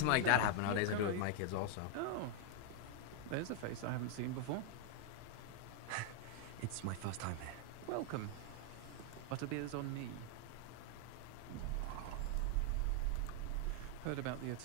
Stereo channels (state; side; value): different; both; correlation 0.00